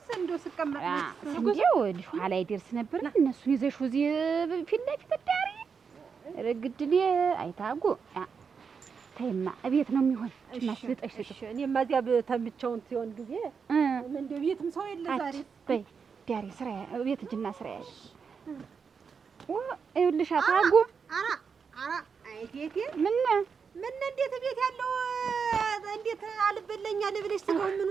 እንደው ስቀመጥ እንደው ልጅ ኋላ ይደርስ ነበር። እነሱን ይዘሽ እዚህ ፊት ለፊት ዳሪ ረግድል አይታጉ ተይማ እቤት ነው የሚሆን ማስልጠሽ ስጭ። እኔማ እዚያ ተምቸውን ሲሆን ጊዜ እንደው ቤትም ሰው የለ ዛሬ በይ ዳሪ ስራ ቤት እጅና ስራ ያሽ ይኸውልሽ ታጉ አይቴቴ ምን እንዴት ቤት ያለው እንዴት አልበለኛ ልብለሽ ስጋው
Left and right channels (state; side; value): quieter; left; 5.9 dB